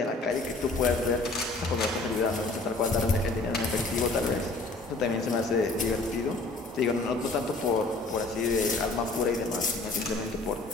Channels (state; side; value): quieter; right; 3.2 dB